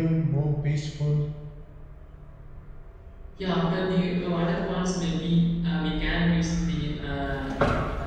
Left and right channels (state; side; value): identical; both; correlation 1.00